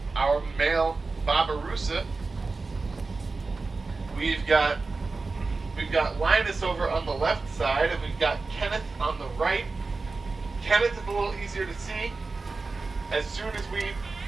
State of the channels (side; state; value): left; quieter; 3.9 dB